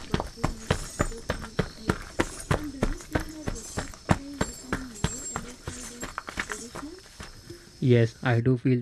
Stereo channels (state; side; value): identical; both; correlation 1.00